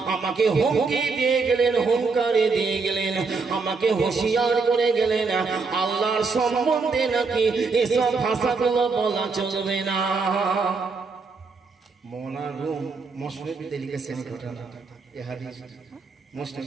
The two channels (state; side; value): quieter; left; 4.4 dB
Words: আমাকে হুমকি দিয়ে গেলেন, হুঙ্কারে দিয়ে গেলেন, আমাকে হুঁশিয়ার করে গেলেন, আল্লাহর সম্বন্ধে নাকি এসব ভাষাগুলো বলা চলবে না। মৌলানা রুম মুসলিমে লিখেছেন ঘটনা, এই হাদিস মুসলিম